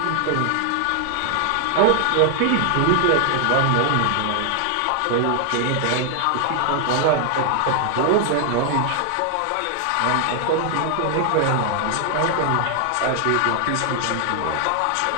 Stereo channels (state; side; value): different; both; correlation 0.00